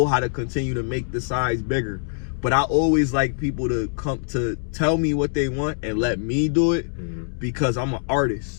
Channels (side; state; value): right; silent; digital silence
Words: how to continue to make the size bigger. But I always like people to come to tell me what they want and let me do it because I'm an